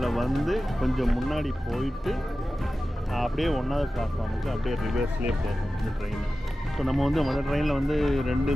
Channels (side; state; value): both; normal; correlation 0.95